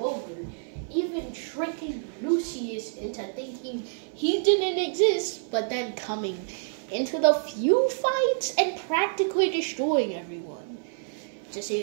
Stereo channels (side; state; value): left; silent; 57 dB below the other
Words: even tricking Lucius into thinking he didn't exist, but then coming into the few fights and practically destroying everyone? Just so